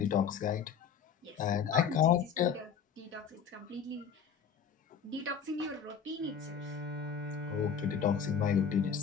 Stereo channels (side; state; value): right; quieter; 7.1 dB